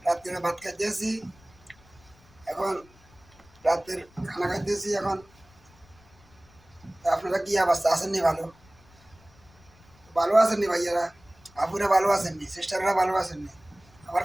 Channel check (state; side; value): noise; left; rumble, 27 dB below the sound